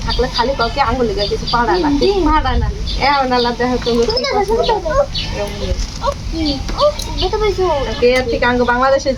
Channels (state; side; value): identical; both; correlation 1.00